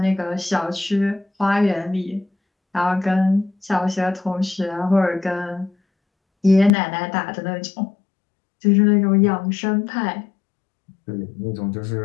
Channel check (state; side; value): drops out; right; at 6.7 s